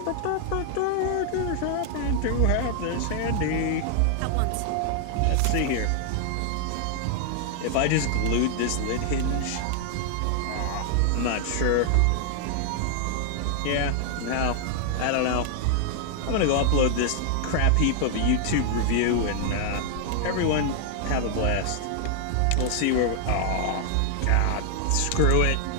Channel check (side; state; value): both; different; correlation 0.00